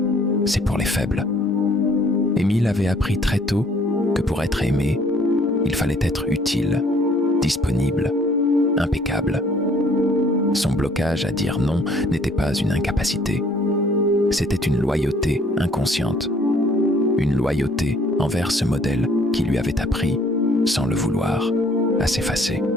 c'est pour les faibles. Émile avait appris très tôt que pour être aimé, il fallait être utile, disponible, impeccable. Son blocage à dire non n'était pas une incapacité. C'était une loyauté inconsciente. Une loyauté envers ce modèle qui lui avait appris, sans le vouloir, à s'effacer.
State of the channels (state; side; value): normal; both; correlation 0.60